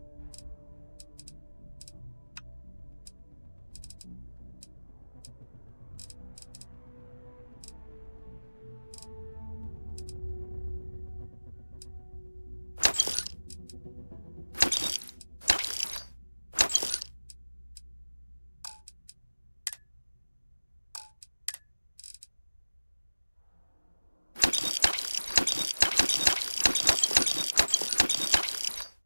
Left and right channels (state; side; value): inverted; both; correlation -1.00